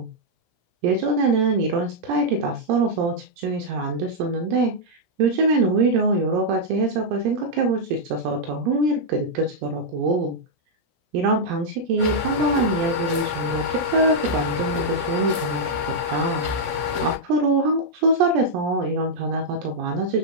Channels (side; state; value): left; late; 16 ms